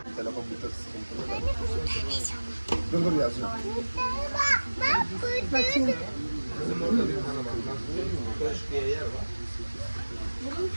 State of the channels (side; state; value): both; inverted; correlation -1.00